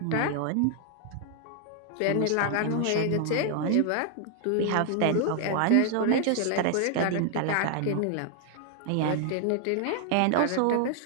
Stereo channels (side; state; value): both; different; correlation 0.00